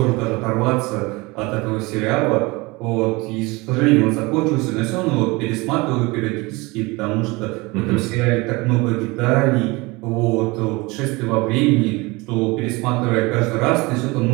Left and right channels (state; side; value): quieter; left; 24.2 dB